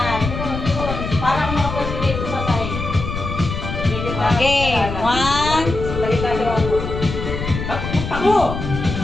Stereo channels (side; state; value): left; noise; rumble, 5 dB below the sound